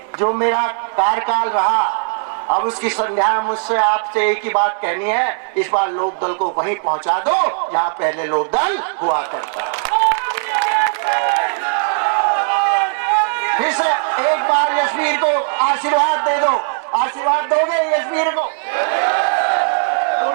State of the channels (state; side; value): silent; left; digital silence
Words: जो मेरा कार्यकाल रहा, अब उसकी संध्या मुझसे आपसे एक ही बात कहनी है, इस बार लोकदल को वहीं पहुंचा दो जहां पहले लोकदल हुआ करता। फिर से एक बार यशवीर को आशीर्वाद दे दो। आशीर्वाद दोगे यशवीर को?